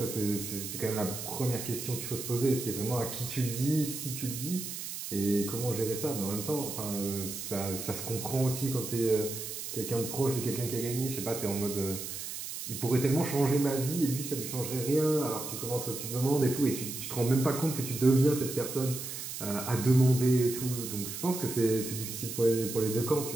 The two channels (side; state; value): right; noise; hiss, 7 dB below the sound